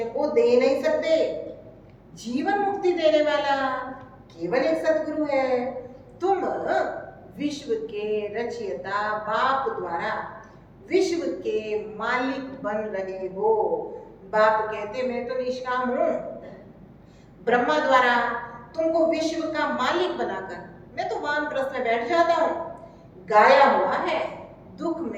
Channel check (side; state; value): both; identical; correlation 1.00